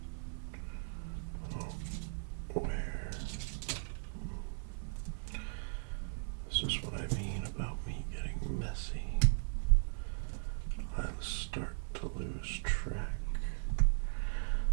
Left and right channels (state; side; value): silent; left; 53 dB below the other